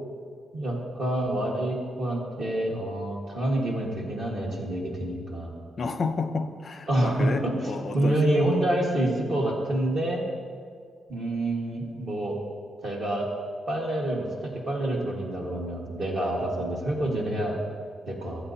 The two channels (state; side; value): normal; both; correlation 0.81